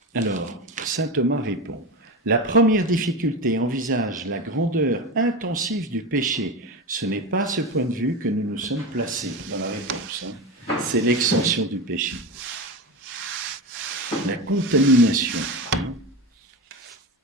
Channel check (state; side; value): normal; both; correlation 0.22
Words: Alors, saint Thomas répond, la première difficulté envisage la grandeur intensive du péché. Ce n'est pas à ce point de vue que nous nous sommes placés dans la réponse. Hein. C'est l'extension du péché. La contamination.